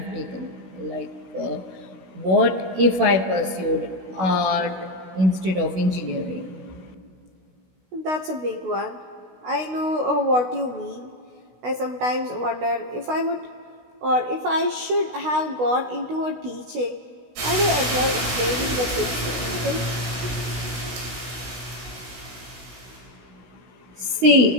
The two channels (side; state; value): left; late; 16 ms